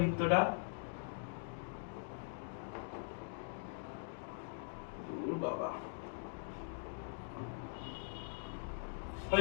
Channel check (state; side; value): silent; right; digital silence